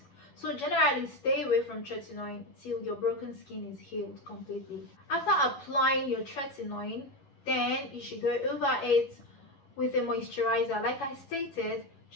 So generally stay away from tretinoin till your broken skin is healed completely. After applying your tretinoin, then you should go over it with a moisturizer. Like I stated,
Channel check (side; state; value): right; late; 11 ms